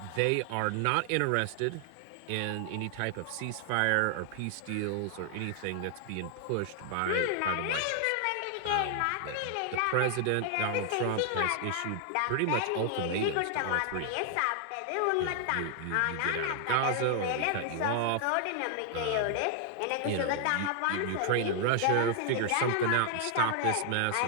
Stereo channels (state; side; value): different; both; correlation 0.00